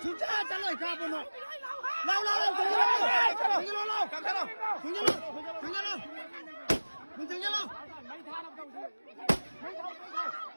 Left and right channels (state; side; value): inverted; both; correlation -1.00